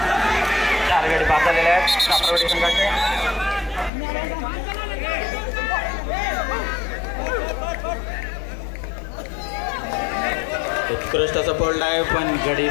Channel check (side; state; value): right; drops out; at 3.9 s